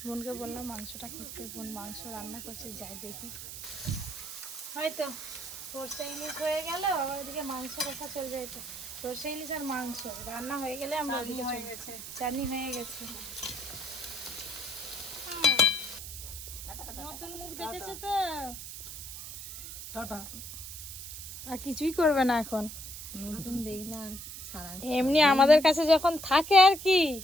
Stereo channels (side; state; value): right; noise; hiss, 10 dB below the sound